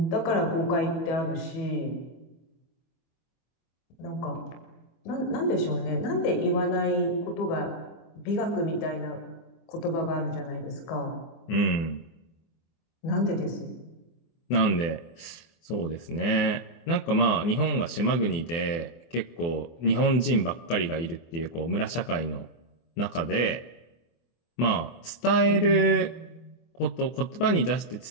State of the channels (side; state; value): right; late; 24 ms